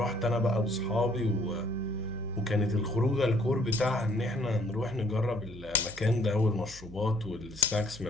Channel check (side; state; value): right; noise; hum, 17 dB below the sound